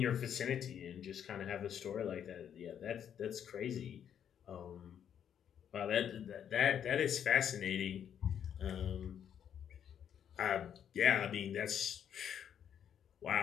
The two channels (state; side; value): quieter; right; 8.9 dB